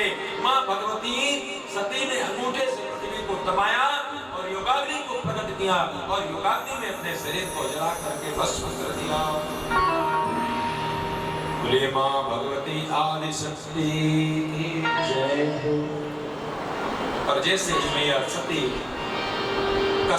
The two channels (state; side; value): identical; both; correlation 1.00